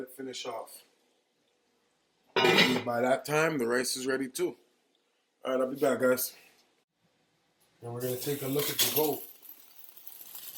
it finish off. By that time, the rice is ready too. Alright, I'll be back, guys. And we're going to take a look at the goat.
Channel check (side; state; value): both; identical; correlation 1.00